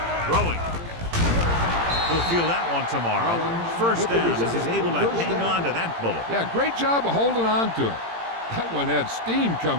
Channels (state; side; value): late; left; 18 ms